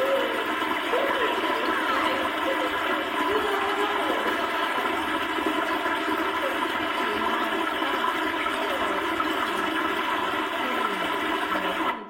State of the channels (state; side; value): identical; both; correlation 1.00